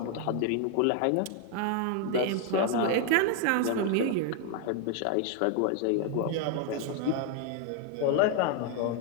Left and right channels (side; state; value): both; different; correlation 0.01